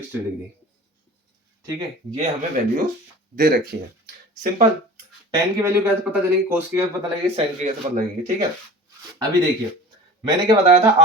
degree. ठीक है, ये हमें वैल्यू दे रखी है। सिंपल, tan की वैल्यू कैसे पता चलेगी, cos की कैसे पता लगेगी, sin की कैसे पता लगेगी। ठीक है, अभी देखिए मैंने क्या बताया था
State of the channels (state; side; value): normal; both; correlation 0.39